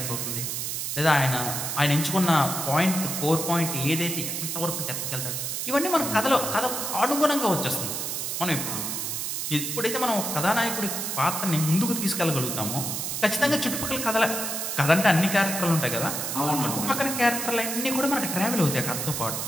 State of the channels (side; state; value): right; noise; hiss, 3 dB below the sound